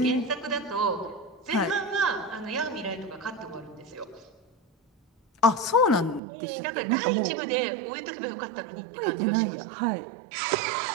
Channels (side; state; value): left; drops out; at 6.2 s